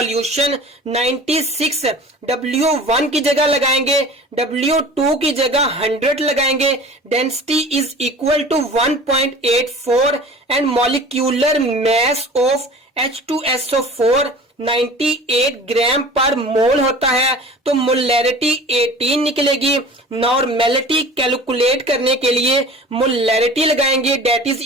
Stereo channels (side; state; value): both; normal; correlation 0.41